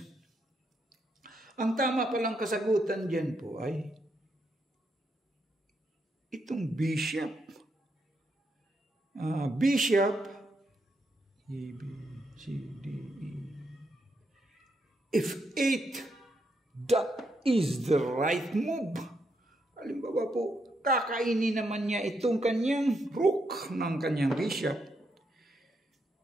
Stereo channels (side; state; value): both; normal; correlation 0.79